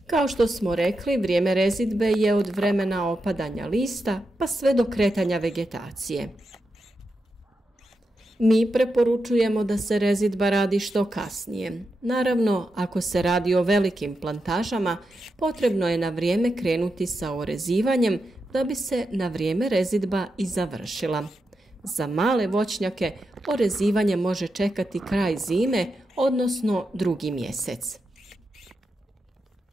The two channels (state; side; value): normal; both; correlation 0.87